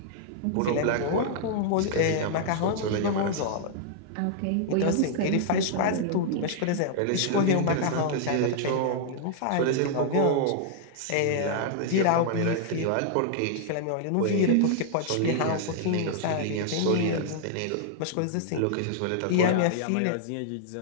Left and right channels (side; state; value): both; different; correlation -0.01